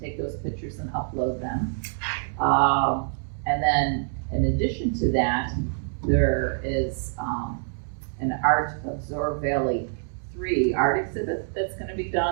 take those pictures and upload them. And then in addition to that, there is an Art of Zoar Valley 3 art exhibit that's going to be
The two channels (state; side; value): silent; left; digital silence